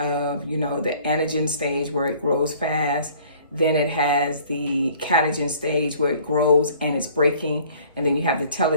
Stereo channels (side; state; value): both; inverted; correlation -0.53